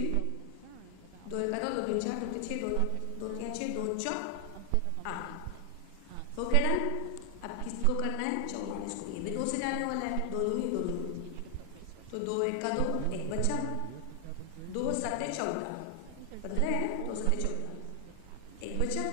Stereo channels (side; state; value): both; different; correlation 0.00